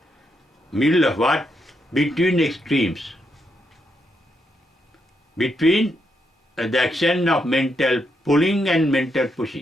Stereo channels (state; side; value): normal; both; correlation 0.80